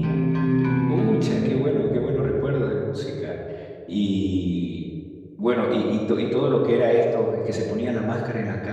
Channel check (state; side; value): identical; both; correlation 1.00